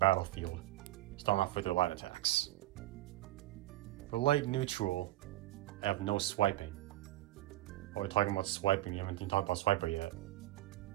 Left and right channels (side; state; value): left; quieter; 16.1 dB